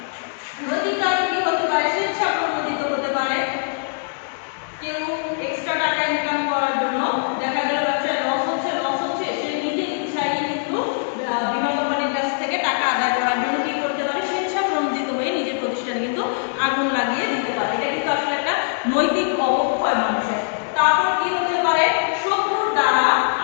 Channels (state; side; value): silent; right; 64 dB below the other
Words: নৈতিক কারণ কি হতে পারে? স্বেচ্ছাপ্রণোদিত হতে পারে। কেউ এক্সট্রা টাকা ইনকাম করার জন্য দেখা গেল ব্যবসায় লস হচ্ছে, সে নিজের ইচ্ছায় কিন্তু বীমা কোম্পানির কাছ থেকে টাকা আদায় করার জন্য কি করতে পারে? স্বেচ্ছাপ্রণোদিত হয়ে নিজের প্রতিষ্ঠানে কিন্তু আগুন লাগিয়ে দিতে পারে। এটা কিন্তু আসলে একটা নৈতিক অবক্ষয় মানুষের। তারপর কি হতে পারে? শত্রুর দ্বারা